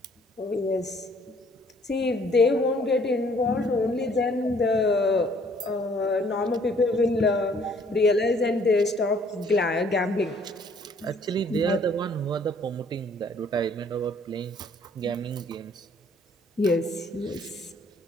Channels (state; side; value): normal; both; correlation 0.60